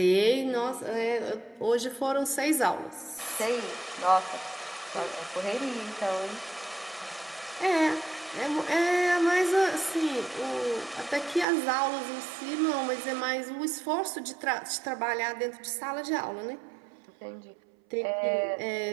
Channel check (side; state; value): left; drops out; at 11.5 s